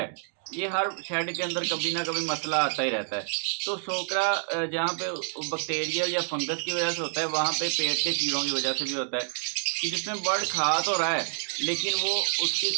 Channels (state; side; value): silent; left; digital silence